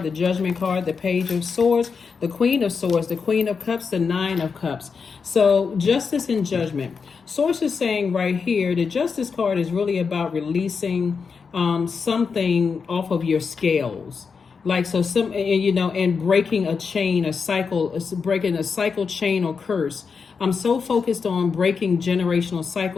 the Judgment card, the Page of Swords, the Queen of Swords, the Queen of Cups, the Nine of Cups. So Justice and Judgment. Source is saying right here, the Justice card is really about releasing something off of your scales. Like, so some, and breaking a chain, a cycle, breaking a cycle, chain, or curse. I'm so focused on breaking generational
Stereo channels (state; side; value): quieter; right; 5.5 dB